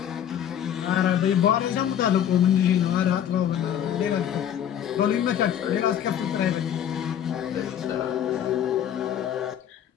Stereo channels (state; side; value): quieter; right; 9.8 dB